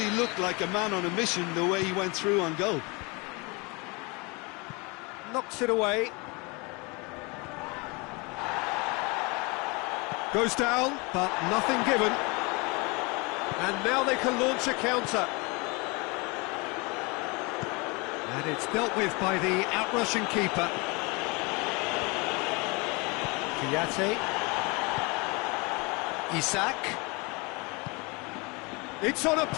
looked like a man on a mission the way he went through on goal. Knocks it away. Goes down, but nothing given. And now they can launch a counter. And it's dealt with by the outrushing keeper. Kiyate. Isak. It's on a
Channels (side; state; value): right; quieter; 28.3 dB